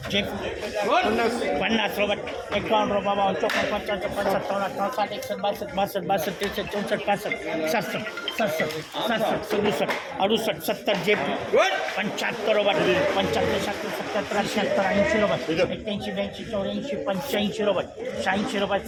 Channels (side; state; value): both; identical; correlation 1.00